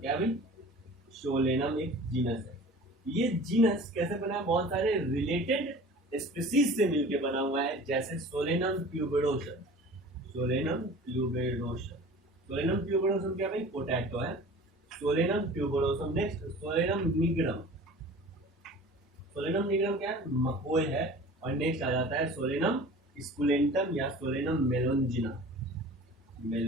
क्या भाई, सोलेनम एक जीनस है। ये जीनस कैसे बना है, बहुत सारे रिलेटेड स्पीसीज से मिलकर बना हुआ है, जैसे Solanum tuberosum, Solanum tuberosum, Solanum tuberosum क्या भाई, पोटैटो है, Solanum tuberosum. Next Solanum nigrum, Solanum nigrum क्या है, मकोय है। और नेक्स्ट आ जाता है सोलेनम स्कुलेंटम या सोलेनम मेलोंजिना,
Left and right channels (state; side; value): normal; both; correlation 0.42